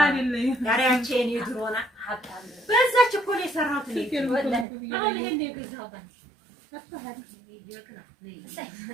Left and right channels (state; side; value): drops out; left; at 4.7 s